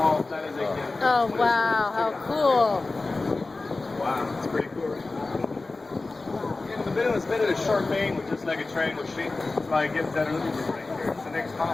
that is again. Oh, wow, how cool. Wow, it's pretty cool, right? Yeah, the building was made of a sharp angle, just like a triangle shape. That's why it gives that illusion right here. It's the next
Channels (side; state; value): right; quieter; 3.4 dB